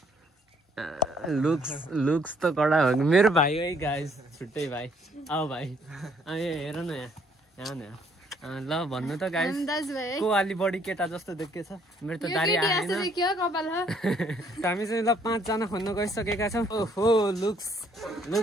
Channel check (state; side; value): normal; both; correlation 0.65